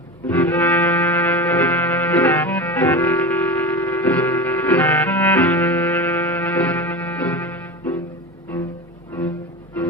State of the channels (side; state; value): both; normal; correlation 0.26